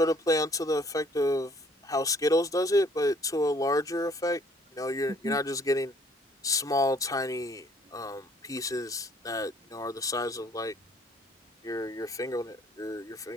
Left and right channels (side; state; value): both; normal; correlation 0.59